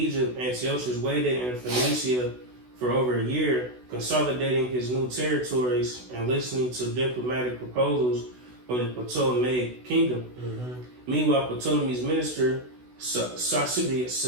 Antiochus waited in Phoenicia for over a year, consolidating his new territories and listening to diplomatic proposals from the Ptolemaic kingdom. Mm-hmm. Meanwhile, Ptolemy's minister,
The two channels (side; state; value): left; late; 16 ms